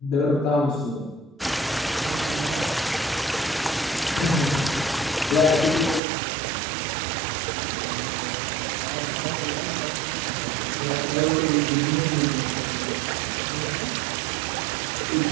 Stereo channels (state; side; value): drops out; left; at 6.0 s